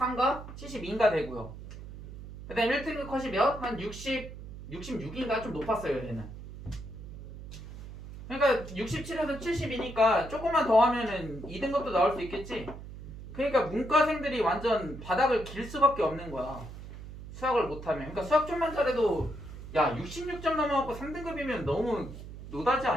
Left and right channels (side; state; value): right; noise; hum, 13 dB below the sound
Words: 72인가 되고요. 그 다음에 1등급 컷이 몇? 한 66인가? 좀 높았어요 얘는. 그러니까 67에서 72니까 조금만 더 하면은 2등급도 나올 수 있겠지? 그러니까 문과생들이 완전 바닥을 길 수밖에 없는 거야. 수학을 못하면. 그러니까 수학 좀만 잘해도 야 66점 넘어갖고 3등급이면 너무 노다지